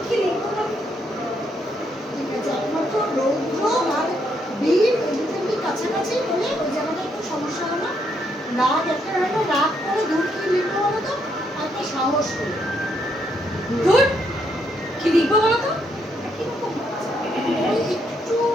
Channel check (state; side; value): normal; both; correlation 0.75